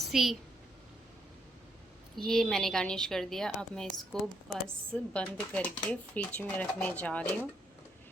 ये मैंने गार्निश कर दिया। अब मैं इसको बस बंद करके फ्रिज में रखने जा रही हूँ,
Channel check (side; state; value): both; normal; correlation 0.74